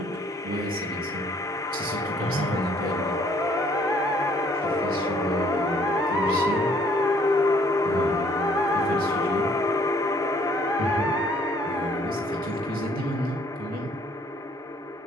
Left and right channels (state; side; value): normal; both; correlation 0.62